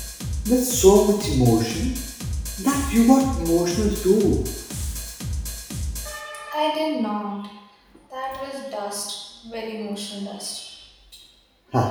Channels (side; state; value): both; identical; correlation 1.00